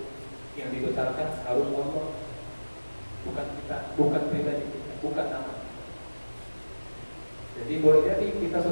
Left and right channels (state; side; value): inverted; both; correlation -1.00